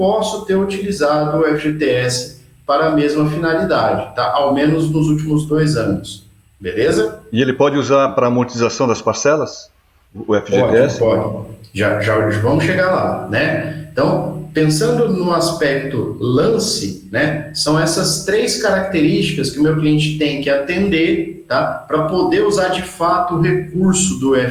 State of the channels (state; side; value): identical; both; correlation 1.00